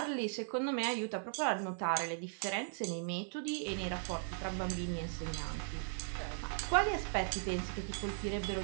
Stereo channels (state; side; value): silent; left; digital silence